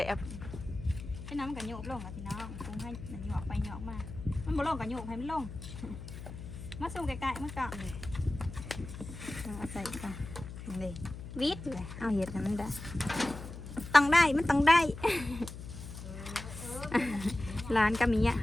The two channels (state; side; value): noise; left; hum, 11 dB below the sound